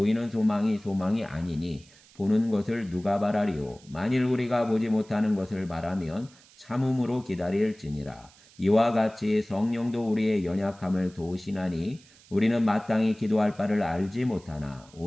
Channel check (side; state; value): right; noise; hiss, 26 dB below the sound